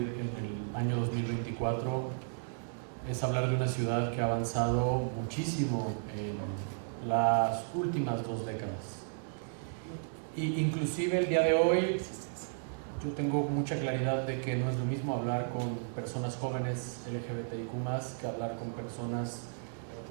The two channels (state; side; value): silent; left; digital silence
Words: el año 2024, es hablar de una ciudad que ha avanzado muchísimo en las últimas 2 décadas. Y inclusive el día de hoy yo tengo mucha claridad de que no es lo mismo hablar con personas jóvenes LGBTIQ+ que hablar con personas